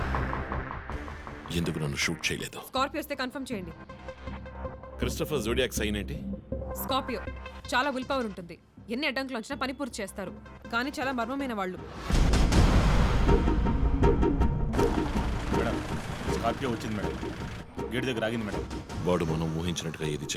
ఎందుకు నన్ను షూట్ చేయలేదు? స్కార్పియో వస్తే కన్ఫర్మ్ చేయండి. క్రిస్టఫర్ జోడియాక్ సైన్ ఏంటి? స్కార్పియో చాలా విల్ పవర్ ఉంటుంది. ఎన్ని అడ్డంకులు వచ్చినా పని పూర్తి చేస్తారు. కానీ చాలా మర్మమైన వాళ్ళు. మేడం, స్కార్పియో వచ్చింది మేడం. గేట్ దగ్గర ఆగింది మేడం. వాడు మనం ఊహించినట్టుగా ఏది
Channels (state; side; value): identical; both; correlation 1.00